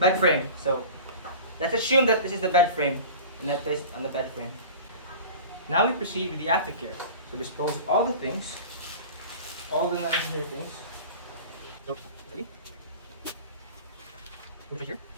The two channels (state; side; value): inverted; both; correlation -0.37